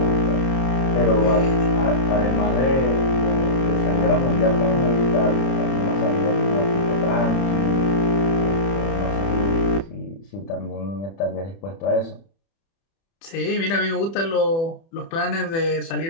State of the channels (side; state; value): right; late; 30 ms